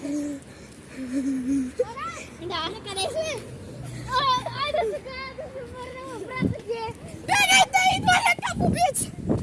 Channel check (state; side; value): identical; both; correlation 1.00